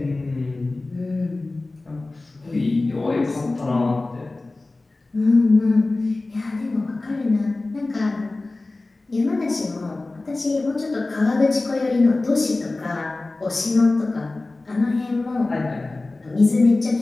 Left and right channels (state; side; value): quieter; right; 3.2 dB